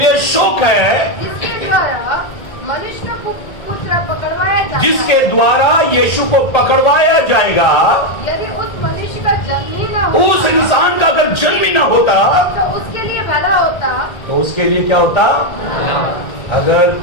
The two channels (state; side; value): late; right; 1.3 ms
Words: शोक है जिसके द्वारा मनुष्य का पुत्र पकड़वाया जाएगा। जिसके द्वारा यीशु को पकड़वाया जाएगा। यदि उस मनुष्य का जन्म ही न होता, उस इंसान का अगर जन्म ही ना होता तो उसके लिए भला होता। तो उसके लिए क्या होता? अगर